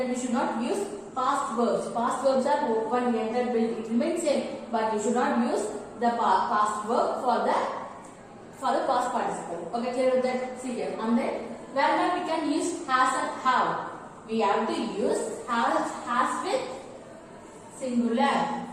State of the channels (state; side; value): identical; both; correlation 1.00